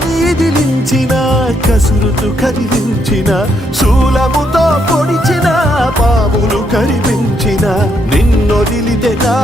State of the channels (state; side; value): normal; both; correlation 0.75